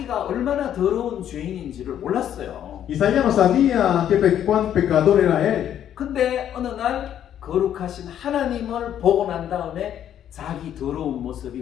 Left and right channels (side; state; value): right; quieter; 10.3 dB